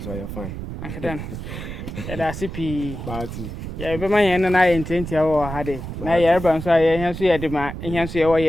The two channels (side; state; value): right; noise; rumble, 8 dB below the sound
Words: I fine Uncle Dan. Ya sipi. party Ya be man yen na ye ntentia wo ha de. Na ye reba nso ye hen so ye de ma hen so ye wo